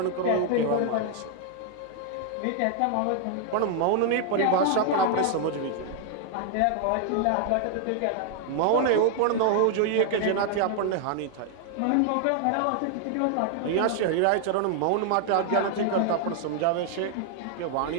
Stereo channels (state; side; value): different; both; correlation 0.00